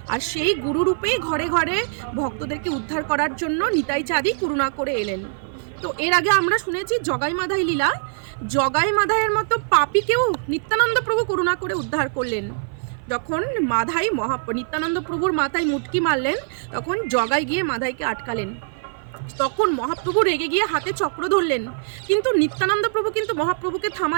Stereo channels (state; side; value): silent; left; 55 dB below the other